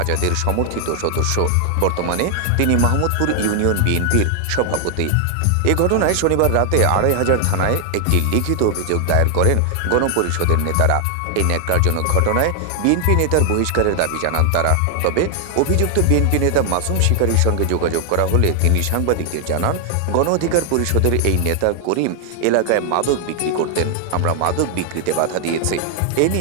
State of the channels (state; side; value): different; both; correlation 0.00